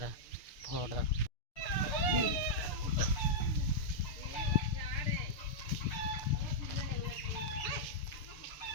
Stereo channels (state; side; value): late; right; 6.7 ms